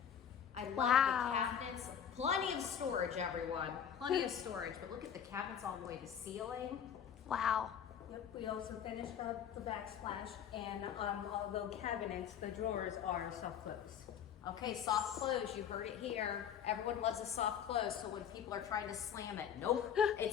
I love the cabinets. Plenty of storage, everyone. Plenty of storage, but look at the cabinets all the way to ceiling. Wow. Yep, we also finished up the backsplash, and although cabinets, the drawers are soft close. Okay, soft close, you heard it here. Everyone loves a soft close, so when people are trying to slam it, nope,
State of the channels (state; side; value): quieter; right; 8.6 dB